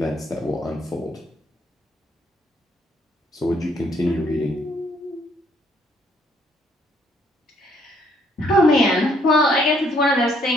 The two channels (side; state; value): both; normal; correlation 0.67